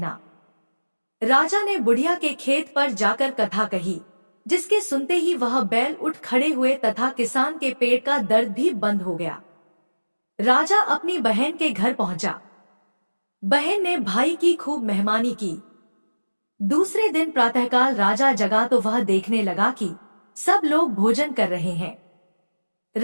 राजा ने बुढ़िया के खेत पर जाकर कथा कही, जिसके सुनते ही वह बैल उठ खड़े हुए तथा किसान के पेट का दर्द भी बंद हो गया। राजा अपनी बहन के घर पहुंचा। बहन ने भाई की खूब मेहमानी की। दूसरे दिन प्रातःकाल राजा जगा तो वह देखने लगा कि सब लोग भोजन कर रहे हैं।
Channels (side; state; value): both; inverted; correlation -1.00